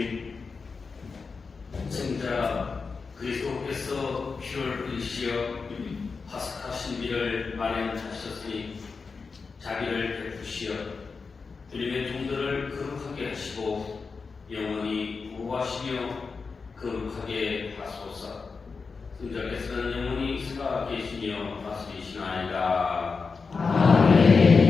승자 그리스도께서 피를 흘리시어 파스카 신비를 마련하셨으니 자비를 베푸시어 주님의 종들을 거룩하게 하시고 영원히 보호하시며 거룩하게 하소서. 승자께서는 영원히 살아계시며 다스리시나이다.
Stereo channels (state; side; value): quieter; right; 4.8 dB